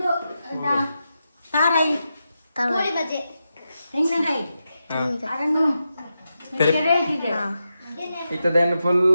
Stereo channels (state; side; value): inverted; both; correlation -0.88